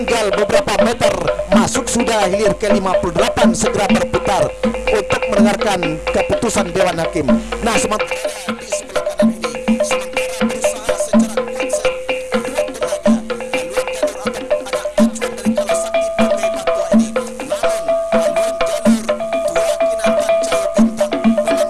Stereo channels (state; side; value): identical; both; correlation 1.00